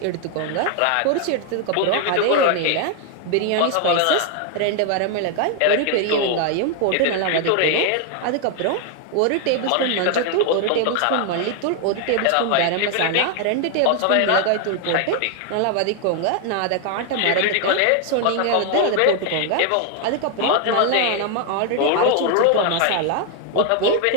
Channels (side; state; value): both; different; correlation 0.00